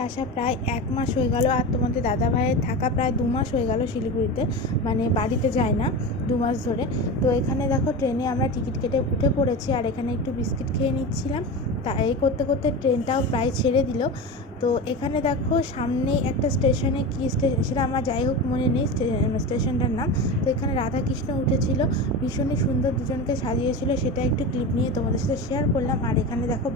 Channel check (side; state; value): both; normal; correlation 0.25